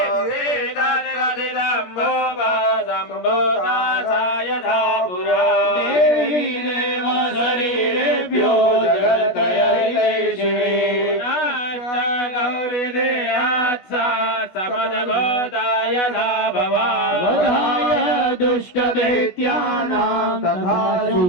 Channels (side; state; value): right; late; 17 ms